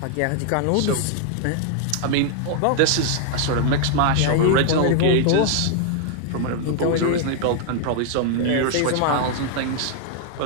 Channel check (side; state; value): both; different; correlation 0.00